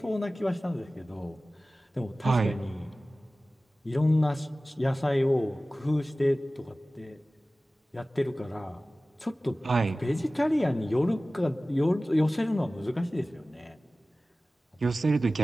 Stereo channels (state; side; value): normal; both; correlation 0.97